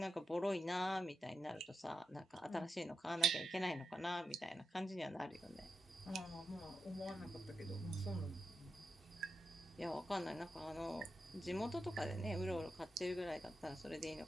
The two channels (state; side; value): normal; both; correlation 0.87